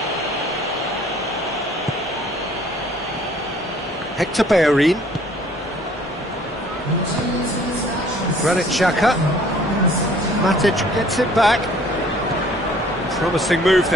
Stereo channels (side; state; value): both; normal; correlation 0.56